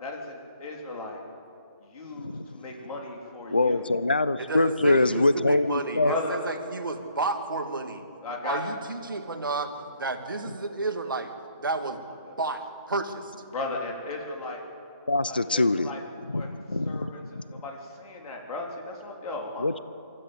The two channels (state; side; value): inverted; both; correlation -0.68